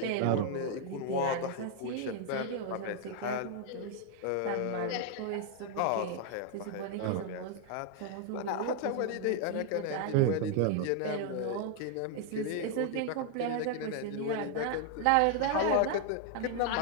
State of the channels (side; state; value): both; different; correlation 0.00